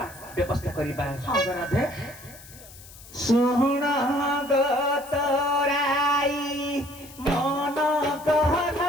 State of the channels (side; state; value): left; noise; hiss, 19 dB below the sound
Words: ବ୍ୟବସ୍ଥା କରିବା ହଁ ରାଧେ ଶୁଣଙ୍ଗ ତୋରାଇ ମନ କହନ